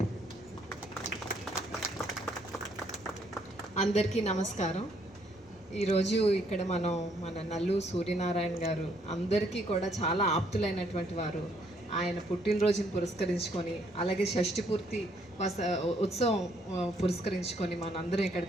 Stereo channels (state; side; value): normal; both; correlation 0.68